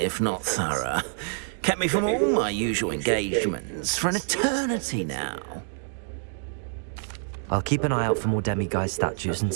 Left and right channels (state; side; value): silent; left; digital silence